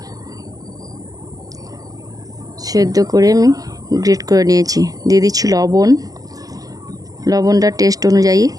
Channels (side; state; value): left; late; 0.17 ms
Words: সেদ্ধ করে আমি গ্রেট করে নিয়েছি। দিয়ে দিচ্ছি লবণটা টেস্ট অনুযায়ী।